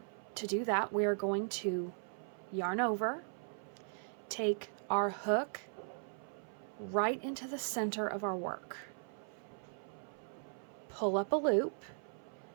do that, we are going to yarn over, take our hook right into the center of our work, pull up a loop.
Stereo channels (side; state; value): left; silent; 52 dB below the other